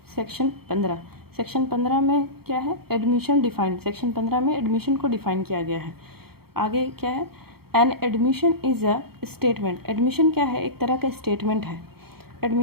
section 15। Section 15 में क्या है, एडमिशन डिफाइंड। सेक्शन 15 में एडमिशन को डिफाइन किया गया है। आगे क्या है, an admission is a statement. Admission क्या है, एक तरह का स्टेटमेंट है।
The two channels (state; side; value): late; left; 0.95 ms